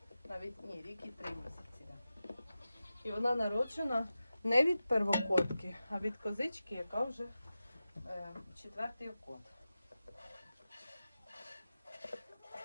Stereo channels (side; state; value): both; inverted; correlation -0.93